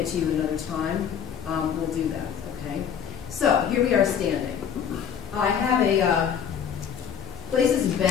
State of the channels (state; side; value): quieter; right; 8.3 dB